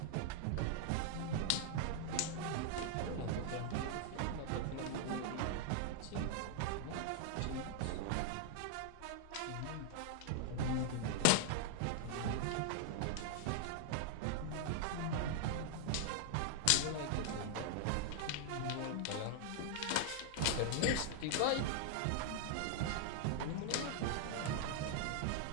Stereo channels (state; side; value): different; both; correlation 0.00